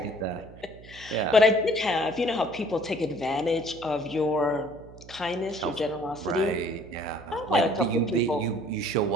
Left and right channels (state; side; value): noise; right; hum, 19 dB below the sound